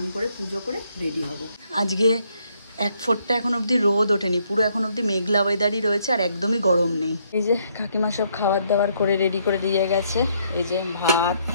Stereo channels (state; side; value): inverted; both; correlation -0.71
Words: করে পুজো করে রেডি হব। আজকে 1 ফোঁটা এখন অবধি রোদ ওঠেনি, পুরো এখন অবধি মেঘলা ওয়েদারই রয়েছে আর একদমই গরম নেই। এই যে কাকিমা সব খাবার দাবার করে রেডি করে দিয়ে গেছে। এই যে ভাত,